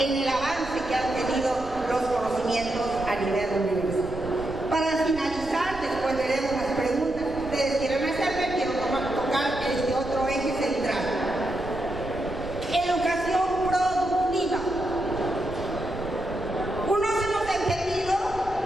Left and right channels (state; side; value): noise; right; rumble, 14 dB below the sound